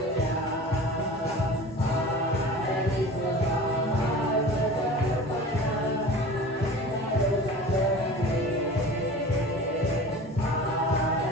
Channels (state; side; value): normal; both; correlation 0.38